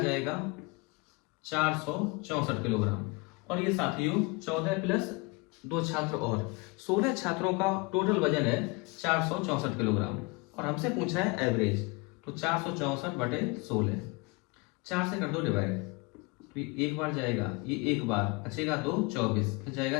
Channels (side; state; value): right; quieter; 27.3 dB